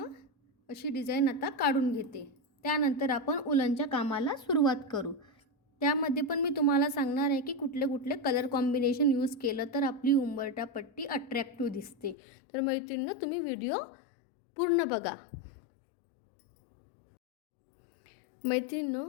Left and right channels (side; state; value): right; drops out; at 12.2 s